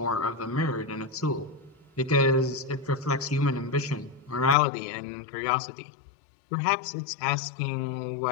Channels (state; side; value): drops out; right; at 4.5 s